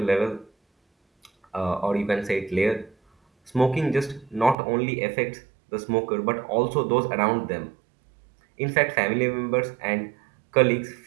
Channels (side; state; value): left; drops out; at 4.5 s